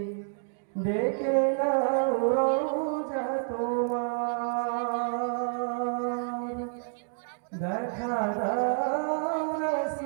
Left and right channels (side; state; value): left; silent; digital silence